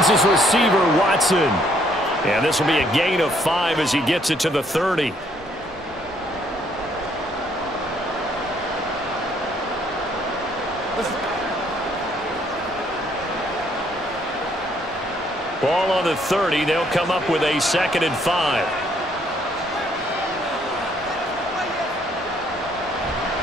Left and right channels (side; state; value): both; normal; correlation 0.67